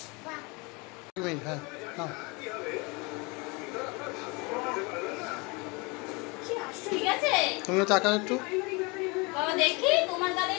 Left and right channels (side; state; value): right; quieter; 28.0 dB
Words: হ্যাঁ নাও ঠিক আছে তুমিও তাকাও একটু বাবা দেখি তোমার গালে